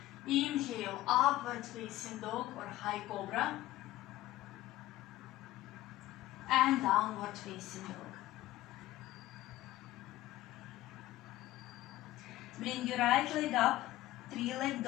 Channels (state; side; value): quieter; right; 16.0 dB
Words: Inhale, upward facing dog or high cobra. And downward facing dog. Bring your right leg up, 3-leg